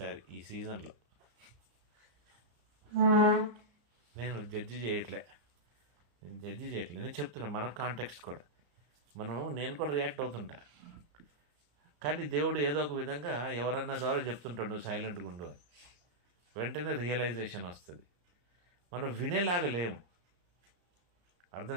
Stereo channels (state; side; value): late; left; 34 ms